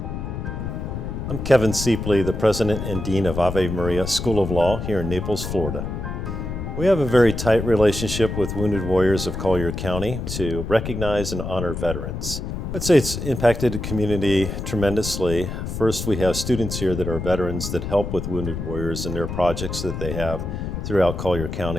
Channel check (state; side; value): noise; left; rumble, 5 dB below the sound